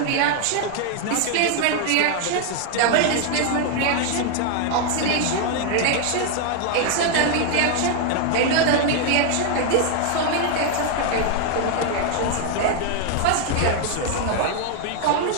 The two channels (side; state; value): both; different; correlation 0.00